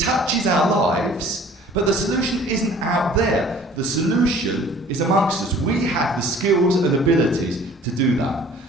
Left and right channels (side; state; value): both; normal; correlation 0.50